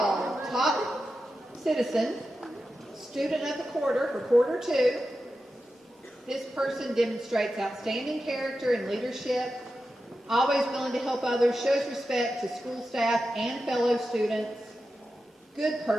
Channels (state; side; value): normal; both; correlation 0.91